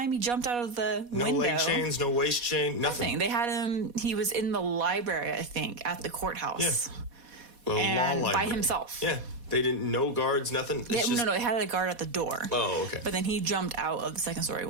He jumped out of the window. No leg chains, no waist chain, nothing. They had him, he was in the library, I think, at the courthourhouse. Well, and by himself. They didn't, no guards, nothing. No, they had a guard at the door. Oh, okay. But then he jumped out of the second story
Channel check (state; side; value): late; left; 4.1 ms